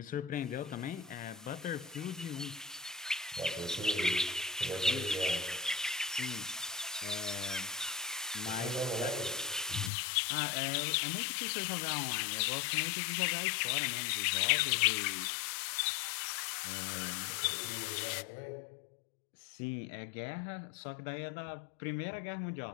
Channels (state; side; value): drops out; right; at 9.9 s